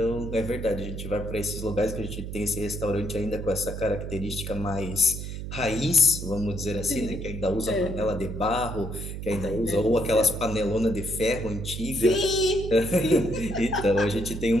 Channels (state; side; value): noise; right; hum, 7 dB below the sound